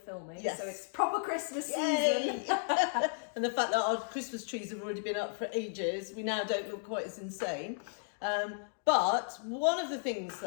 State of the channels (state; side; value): silent; right; digital silence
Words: Yes. So it's proper Christmas Yay! season. And the fact that our Christmas trees have already been up for ages, we now don't look quite as insane. But one of the things